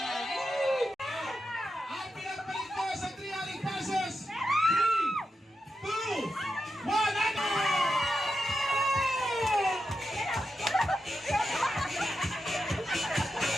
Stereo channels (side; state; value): both; normal; correlation 0.88